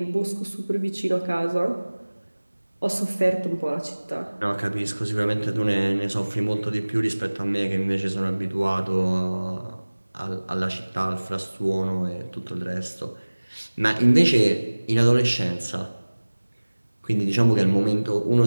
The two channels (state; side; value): inverted; both; correlation -1.00